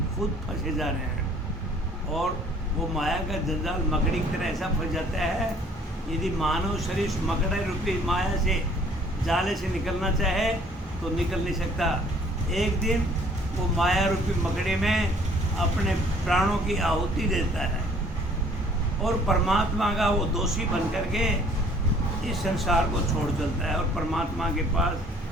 खुद फंसे जा रहे हैं। और वो माया का जंजाल मकड़ी की तरह ऐसा फंस जाता है, यदि मानव शरीर मकड़े रूपी माया से जाले से निकलना चाहे तो निकल नहीं सकता। एक दिन वो माया रूपी मकड़ी में अपने प्राणों की आहुति देता है और परमात्मा का वो दोषी बन करके इस संसार को छोड़ चलता है। और परमात्मा के पास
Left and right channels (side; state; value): both; normal; correlation 0.57